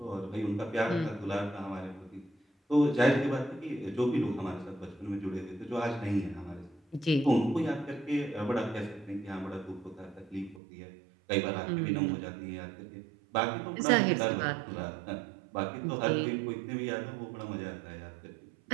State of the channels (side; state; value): left; drops out; at 10.6 s